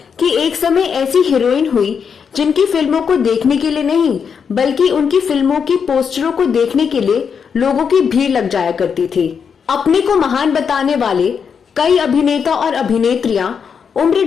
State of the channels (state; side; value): quieter; right; 6.6 dB